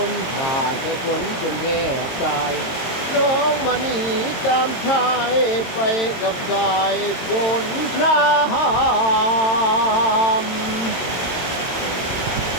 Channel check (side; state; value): right; late; 22 ms